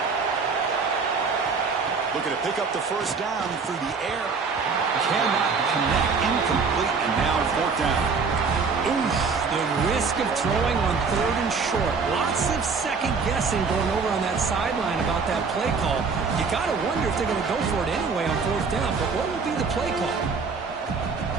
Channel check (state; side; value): quieter; left; 5.0 dB